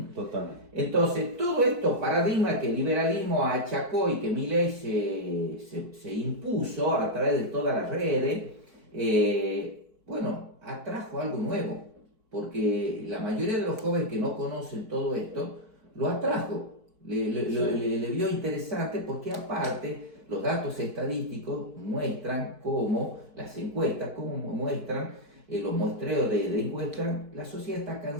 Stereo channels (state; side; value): late; left; 4.5 ms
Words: Totalmente. Entonces, todo estos paradigmas que el liberalismo achacó y que Milei se impuso a través de todas las redes, bueno, atrajo algo nuevo, porque la mayoría de los jóvenes que no conocen todo esto, lo atrajo, le vio interesante, porque aparte los datos estadísticos muestran cómo, las encuestas, cómo muestran los muestreos de encuestas, la sociedad está